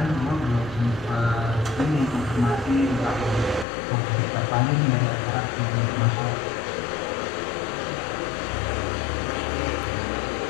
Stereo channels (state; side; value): drops out; right; at 3.7 s